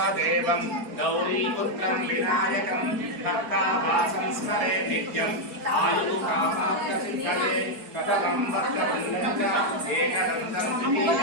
దేవం గౌరీపుత్రం వినాయకం కర్తావాసం స్మరే నిత్యం ఆయు కామాప్త సిద్ధే కథం వక్రవందన ఏకదంతం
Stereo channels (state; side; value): late; left; 4.7 ms